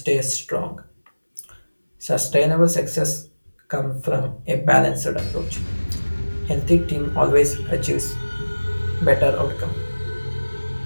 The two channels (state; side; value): inverted; both; correlation -1.00